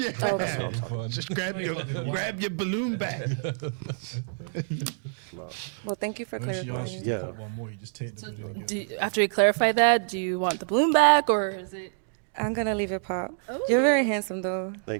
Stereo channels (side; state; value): left; silent; digital silence